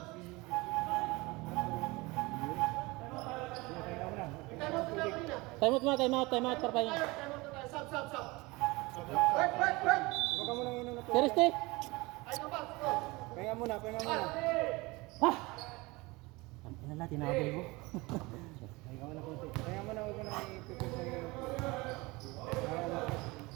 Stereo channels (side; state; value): left; quieter; 23.4 dB